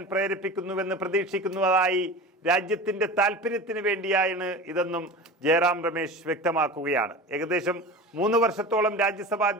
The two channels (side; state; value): both; normal; correlation 0.33